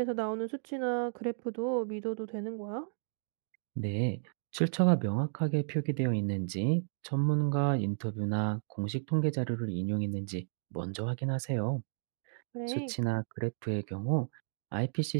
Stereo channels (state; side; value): silent; left; digital silence